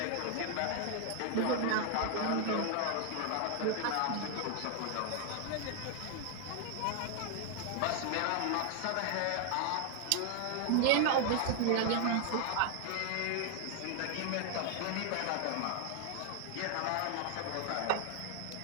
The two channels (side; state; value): both; different; correlation 0.00